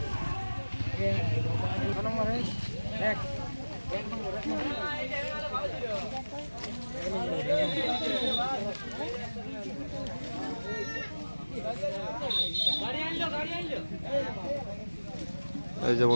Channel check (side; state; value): both; inverted; correlation -1.00